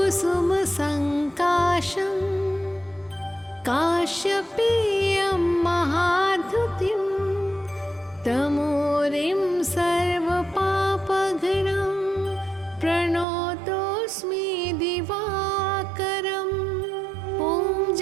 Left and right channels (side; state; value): left; drops out; at 13.2 s